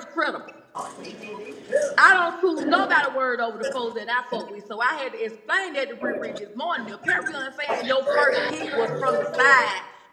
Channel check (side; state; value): both; identical; correlation 1.00